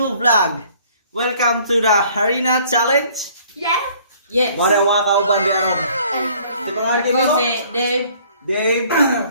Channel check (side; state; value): both; inverted; correlation -0.57